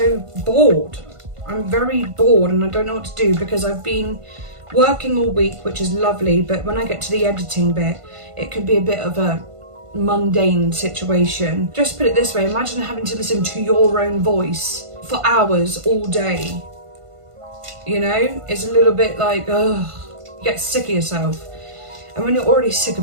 bored. I'm very bored and I don't know what to do because I've been working all week, which is lovely, but when I get to the editing bit, it could be a bit of a mundane situation. Just put it this way, imagine having to listen to your own voice for hours all day. You know, it's a little bit like, ugh, you get sick of yourself. And when you're already sick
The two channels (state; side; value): late; left; 1.5 ms